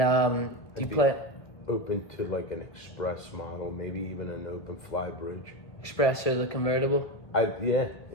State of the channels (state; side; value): late; right; 1.7 ms